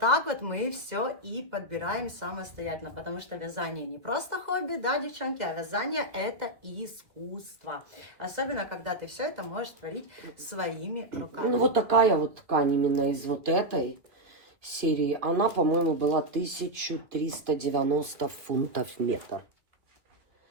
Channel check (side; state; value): left; late; 2.3 ms